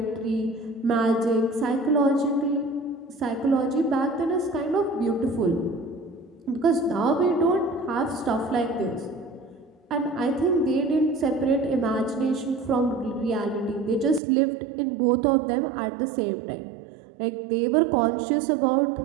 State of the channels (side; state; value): left; drops out; at 14.2 s